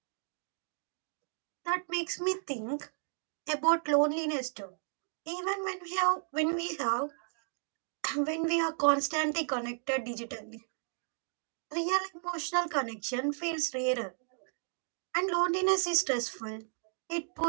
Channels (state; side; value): silent; left; digital silence